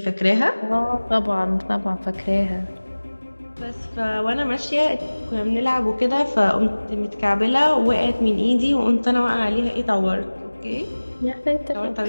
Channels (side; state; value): both; inverted; correlation -1.00